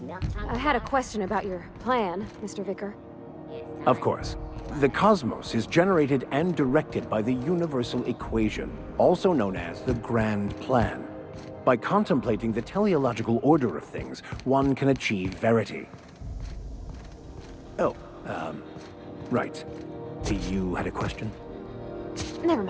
milk chocolate. I had a question about your plan, Mr. Vicker. Of course. The cosmos is generated and directed by the universal equation, also known as the Grand Plan. By contemplating the teleological order of things, one can achieve verity. Oh, right. You had a question? Never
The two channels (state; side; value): identical; both; correlation 1.00